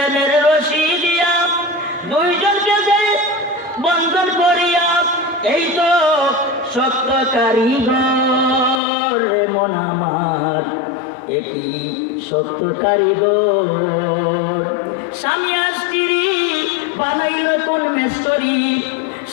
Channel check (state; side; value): drops out; right; at 8.8 s